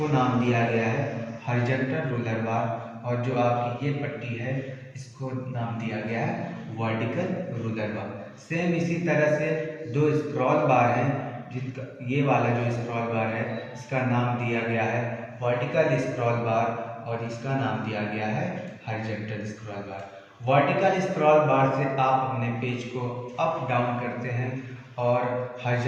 नाम दिया गया है हॉरिजॉन्टल रूलर बार, और जो आपकी ये पट्टी है इसको नाम दिया गया है वर्टिकल रूलर बार। सेम इसी तरह से दो स्क्रॉल बार हैं, जिनका ये वाला जो स्क्रॉल बार है इसका नाम दिया गया है वर्टिकल स्क्रॉल बार और इसका नाम दिया गया है हॉरिजॉन्टल स्क्रॉल बार। वर्टिकल स्क्रॉल बार से आप अपने पेज को अप डाउन करते हैं और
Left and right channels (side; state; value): both; identical; correlation 1.00